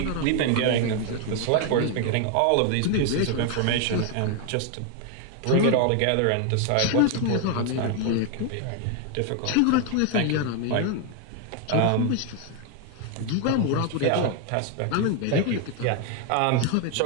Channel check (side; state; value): both; different; correlation 0.01